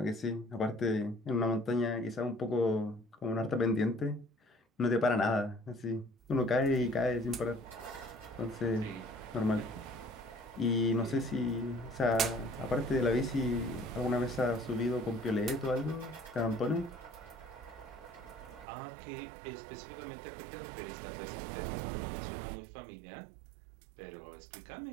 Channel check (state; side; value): drops out; left; at 18.7 s